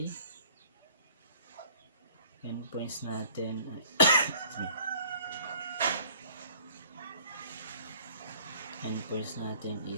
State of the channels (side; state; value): both; inverted; correlation -0.53